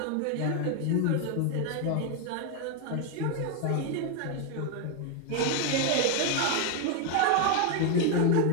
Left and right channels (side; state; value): both; different; correlation 0.01